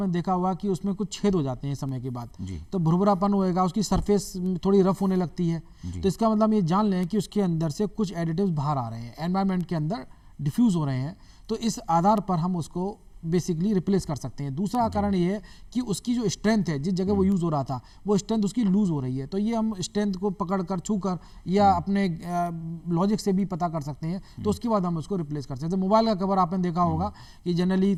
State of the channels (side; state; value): both; identical; correlation 1.00